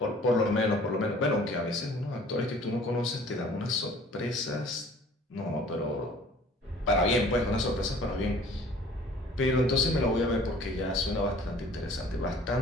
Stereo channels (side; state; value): both; normal; correlation 0.51